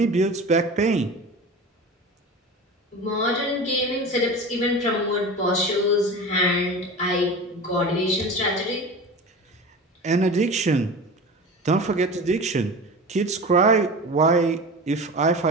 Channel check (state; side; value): normal; both; correlation 0.32